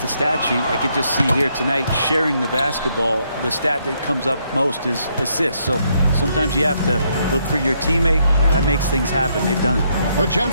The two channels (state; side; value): inverted; both; correlation -0.74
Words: stat sheet, I could just see here tonight sharing the basketball. The stat that comes up most is assists. So sometimes you have to look for your teammate. That makes things happen. They've done it.